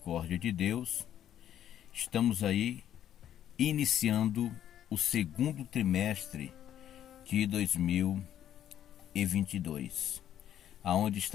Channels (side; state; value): right; quieter; 10.8 dB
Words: de Deus, estamos aí iniciando o segundo trimestre de 2022, aonde